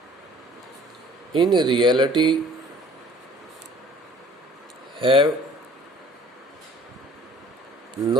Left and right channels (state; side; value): normal; both; correlation 0.52